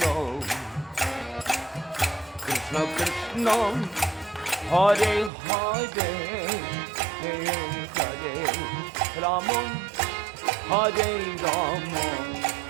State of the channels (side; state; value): left; drops out; at 5.3 s